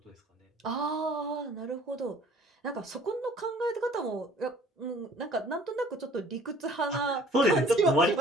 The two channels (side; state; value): both; normal; correlation 0.53